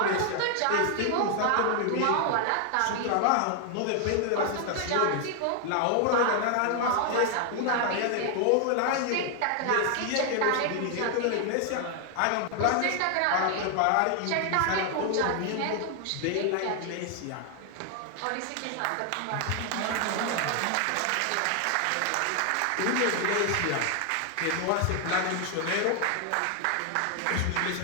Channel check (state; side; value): different; both; correlation 0.00